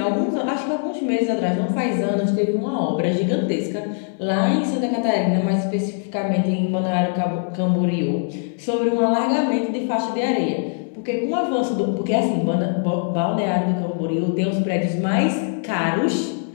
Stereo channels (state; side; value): silent; right; digital silence